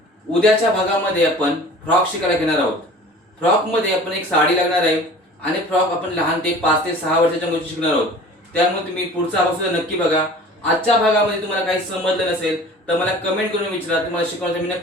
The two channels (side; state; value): both; normal; correlation 0.44